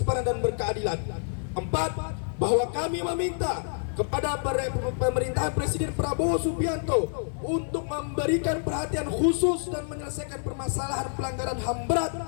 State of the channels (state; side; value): silent; right; digital silence